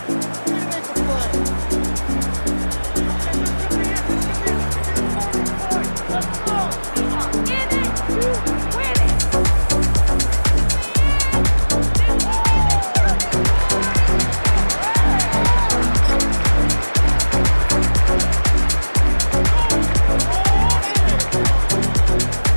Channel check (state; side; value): inverted; both; correlation -1.00